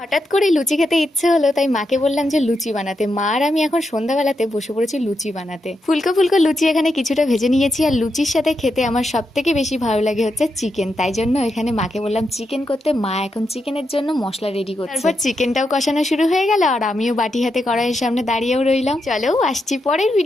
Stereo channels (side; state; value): both; normal; correlation 0.84